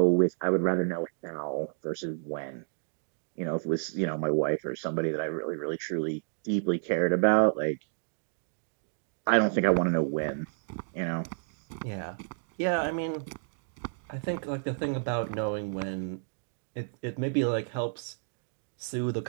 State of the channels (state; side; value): silent; left; digital silence